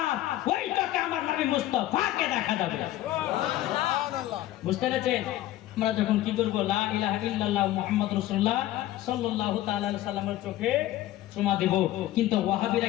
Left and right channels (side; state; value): right; quieter; 14.6 dB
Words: ওই চোখে আমার নবী মুস্তাফাকে দেখা যাবে। বুঝতে পেরেছেন? আমরা যখন কি করব, লা ইলাহা ইল্লাল্লাহ মুহাম্মাদুর রাসূলুল্লাহ সাল্লাল্লাহু তাআলা আলাইহি সাল্লামের চোখে চুমা দেব। কিন্তু